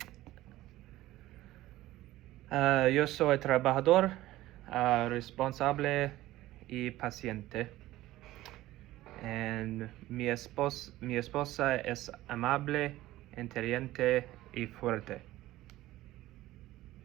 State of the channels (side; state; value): left; quieter; 16.2 dB